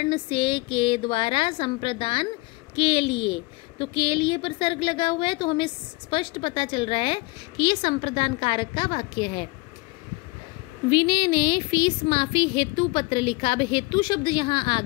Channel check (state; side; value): quieter; right; 24.7 dB